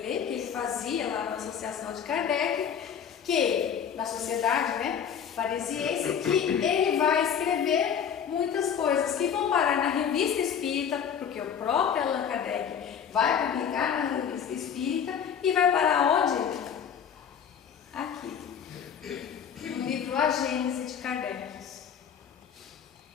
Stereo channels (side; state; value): right; quieter; 7.9 dB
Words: que ele fazia lá na Associação de Kardec, que na sociedade, né, parisiense, que ele vai escrever muitas coisas que vão parar na Revista Espírita, porque o próprio Allan Kardec vai publicar na Revista Espírita e vai parar onde? Aqui, no livro A Gênese de Kardec,